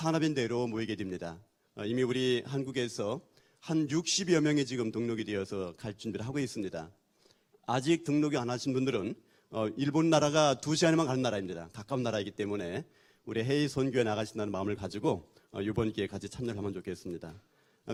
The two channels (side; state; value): both; identical; correlation 1.00